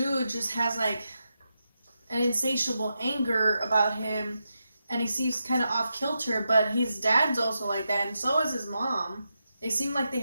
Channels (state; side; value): inverted; both; correlation -0.87